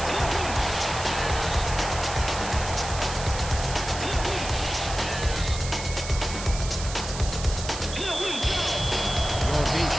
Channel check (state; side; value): noise; right; hiss, 9 dB below the sound